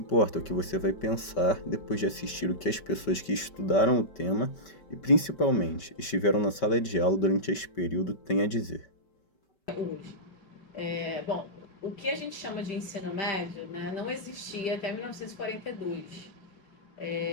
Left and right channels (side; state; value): right; late; 5.2 ms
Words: é o que você vai pensar depois de assistir o que as pessoas que estudaram o tema e, principalmente, estiveram na sala de aula durante esse período têm a dizer. Hoje. Bom, o que a gente chama de ensino médio, né, não existia até 1942.